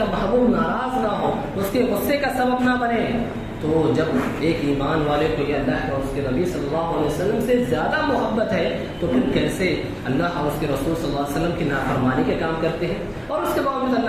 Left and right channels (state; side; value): identical; both; correlation 1.00